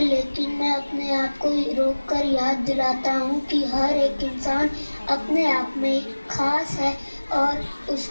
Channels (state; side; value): inverted; both; correlation -1.00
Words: लेकिन मैं अपने आप को रोक कर याद दिलाता हूँ कि हर एक इंसान अपने आप में खास है और